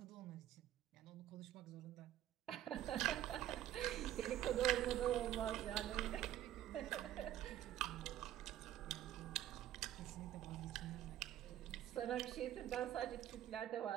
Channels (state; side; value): quieter; left; 12.4 dB